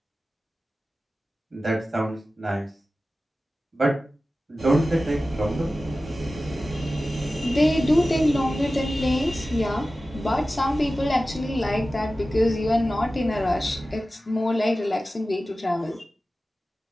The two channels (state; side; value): normal; both; correlation 0.95